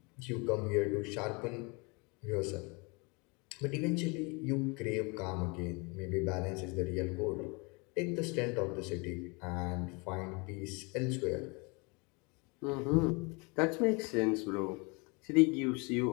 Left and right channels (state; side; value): quieter; right; 29.7 dB